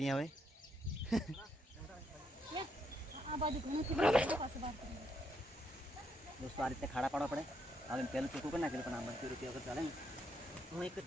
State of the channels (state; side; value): normal; both; correlation 0.76